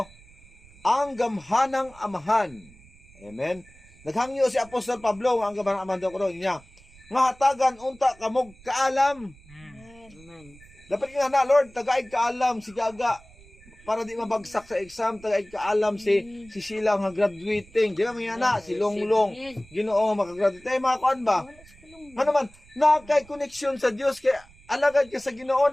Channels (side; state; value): right; noise; rumble, 24 dB below the sound